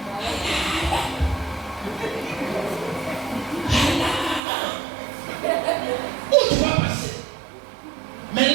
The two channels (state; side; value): drops out; left; at 4.4 s